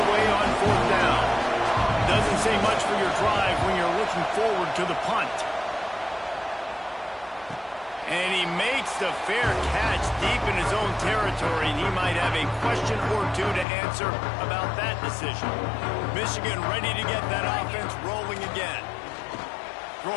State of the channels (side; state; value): right; drops out; at 13.7 s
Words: away on 4th down. Doesn't say much for your drive when you're looking forward to the punt. And he makes the fair catch deep in his own territory. And he might have a question or two to answer about that decision. Michigan ready to get that offense rolling again.